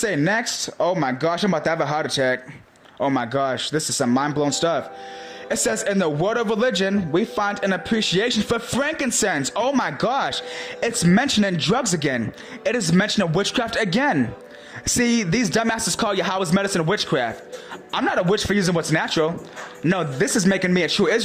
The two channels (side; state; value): both; identical; correlation 1.00